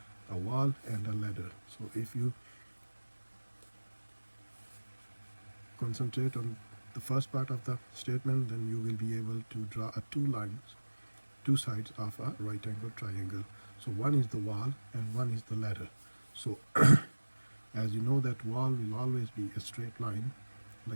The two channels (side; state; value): both; inverted; correlation -1.00